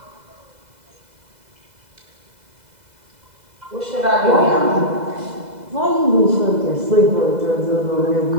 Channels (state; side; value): late; left; 2.0 ms